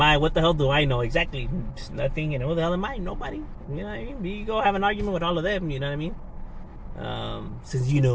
I? What the hell do I know? Exactly. Nothing. And who the hell am I? Nobody. You know what I mean? You go have an argument with all of them. You know what I mean? Since you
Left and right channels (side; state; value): both; identical; correlation 1.00